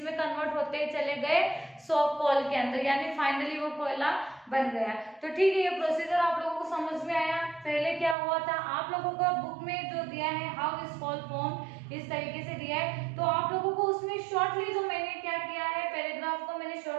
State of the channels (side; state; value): left; drops out; at 8.2 s